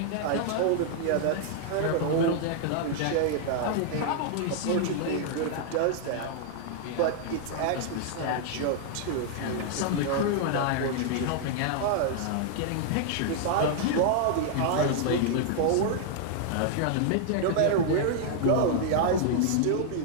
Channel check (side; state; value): both; different; correlation 0.00